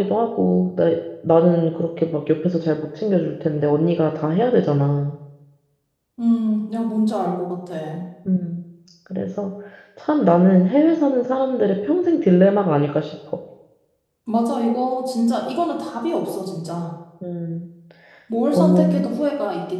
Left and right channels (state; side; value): identical; both; correlation 1.00